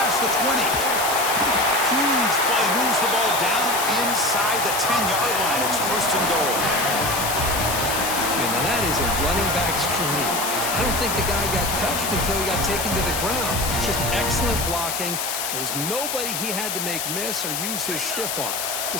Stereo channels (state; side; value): noise; left; hiss, 2 dB below the sound